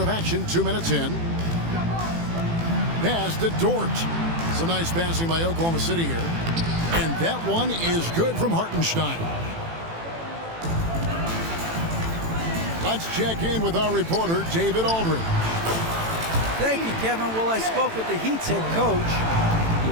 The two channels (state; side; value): late; left; 18 ms